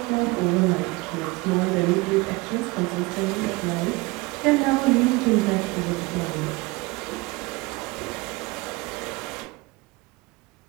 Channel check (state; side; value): quieter; left; 23.5 dB